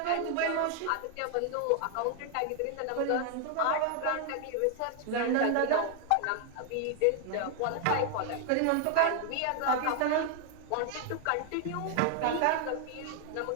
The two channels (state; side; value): different; both; correlation 0.00